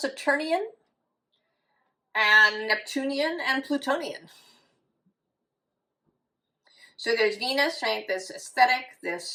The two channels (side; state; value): both; identical; correlation 1.00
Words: and Neptunian and Plutonian. So there's Venus, right? This aesthetic,